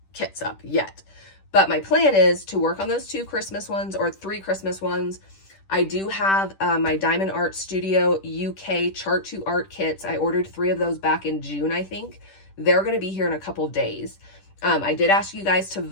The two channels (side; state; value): right; late; 10 ms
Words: kits up yet, but my plan is to work on those 2 Christmas ones or 3 Christmas ones. I do have my Diamond Art Studio UK Chart to Art kits. I ordered 3 of those back in June, I think. They're going to be here in a couple days. I did ask you guys to